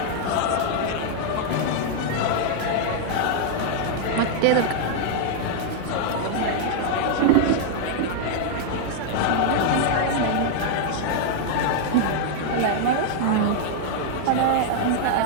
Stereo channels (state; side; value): different; both; correlation 0.00